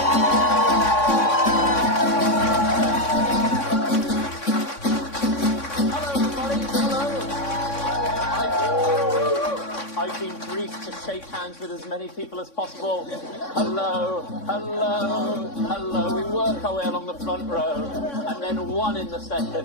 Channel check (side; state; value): right; late; 3.6 ms